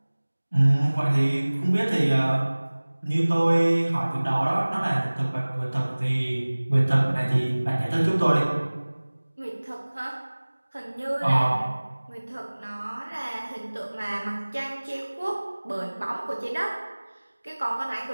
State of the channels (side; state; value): both; inverted; correlation -1.00